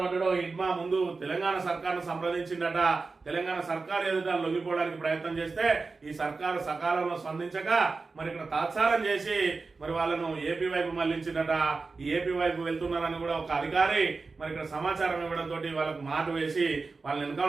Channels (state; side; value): quieter; left; 4.1 dB